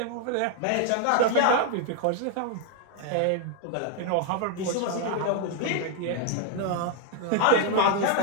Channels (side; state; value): both; different; correlation 0.00